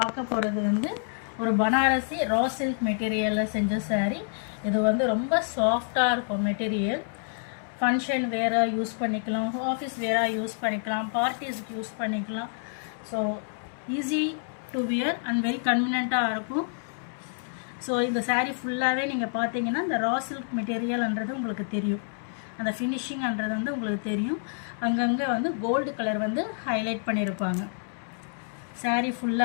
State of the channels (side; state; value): right; silent; 59 dB below the other